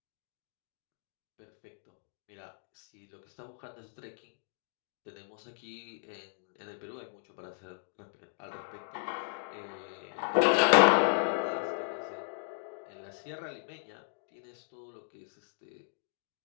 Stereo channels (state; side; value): silent; right; digital silence